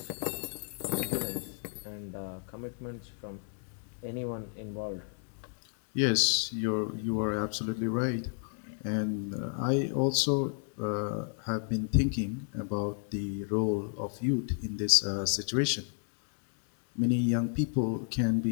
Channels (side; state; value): right; silent; 56 dB below the other